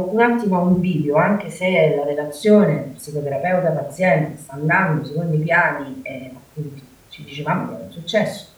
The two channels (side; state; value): both; identical; correlation 1.00